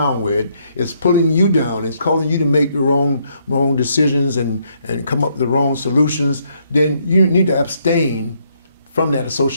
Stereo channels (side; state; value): both; inverted; correlation -0.71